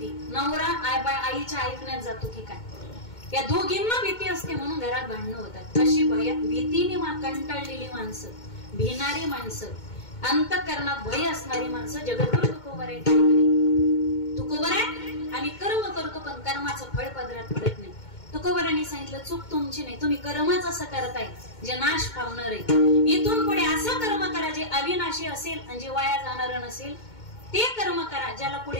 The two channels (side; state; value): right; late; 2.2 ms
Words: नवरा आईच्या ऐकण्यात जातो की काय. या दोघींना भीती असते म्हणून घरात भांडणं होतात. अशी भीतीने कंटाळलेली माणसं, भिणारी माणसं, अंतःकरणात भय असणारी माणसं जगतभर तुकोबर आहे. तुकोबर आहे आणि कर्म करतो पण कर्माचं फळ पदरात पडत नाही. तुकोबरांनी सांगितलं चूक तुमची नाही, तुम्ही कर्मच असं करताय जे नाश पावणार आहे. इथून पुढे असं कर्म करा जे अविनाशी असेल आणि जे वाया जाणार नसेल. ते कर्म करा ज्याला